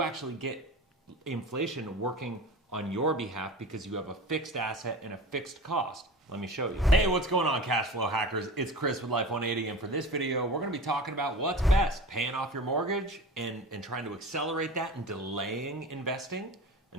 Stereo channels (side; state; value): both; normal; correlation 0.34